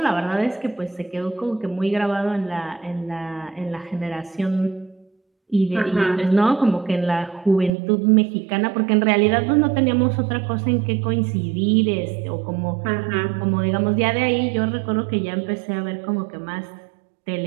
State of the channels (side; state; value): left; drops out; at 7.7 s